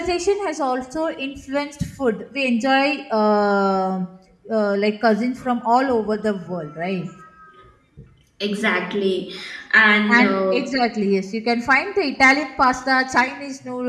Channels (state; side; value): identical; both; correlation 1.00